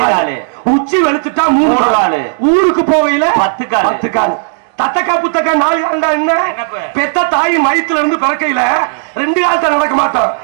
உச்சி வெளுத்துட்டா 3 கால், ஊருக்கு போகையில 10 கால். தத்தக்கா புத்தக்கா 4 கால்டா என்ன? பெத்த தாய் மயத்துல இருந்து பிறக்கையில 2 காலத்தை நடக்க மாட்டோம்.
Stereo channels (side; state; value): left; silent; digital silence